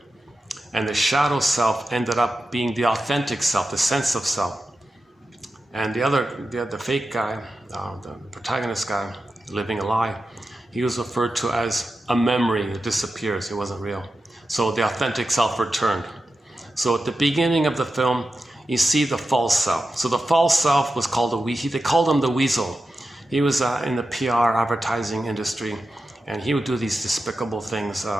And the shadow self ended up being the authentic self, the sense of self. And the fake guy, the protagonist guy, living a lie, he was referred to as a memory that disappears. It wasn't real. So the authentic self returned. So at the beginning of the film, you see the false self. So the false self was called they called him the weasel. He was in the PR advertising industry, and he would do these despicable things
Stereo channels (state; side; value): normal; both; correlation 0.91